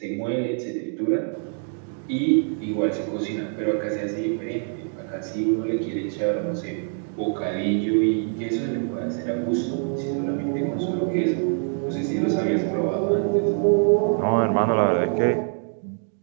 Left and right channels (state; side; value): silent; left; 57 dB below the other